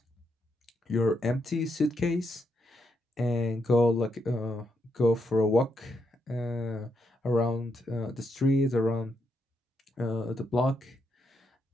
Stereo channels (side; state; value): both; normal; correlation 0.80